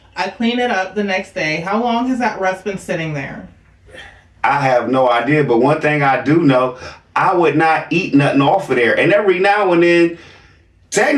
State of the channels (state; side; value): identical; both; correlation 1.00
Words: I clean it up the next day. How long has that rust been sitting there? I have no idea, but one thing I do know, I would not eat nothing off of there. And every now and then,